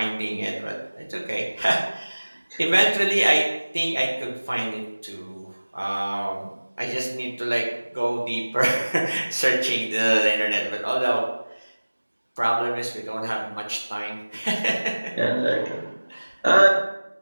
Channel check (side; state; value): both; inverted; correlation -1.00